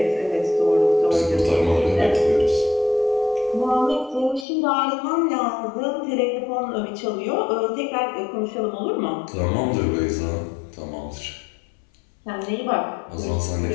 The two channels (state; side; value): drops out; right; at 4.5 s